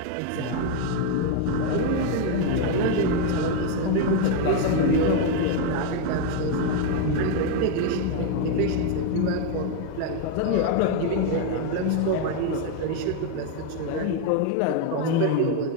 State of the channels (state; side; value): different; both; correlation 0.01